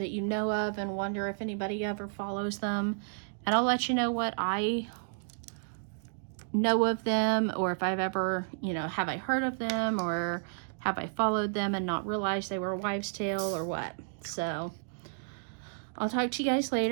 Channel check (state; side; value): silent; left; digital silence